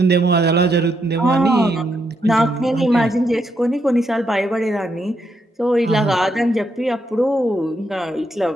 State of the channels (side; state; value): both; normal; correlation 0.78